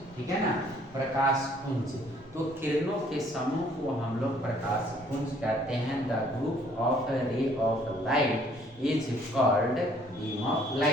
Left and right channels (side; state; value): both; normal; correlation 0.61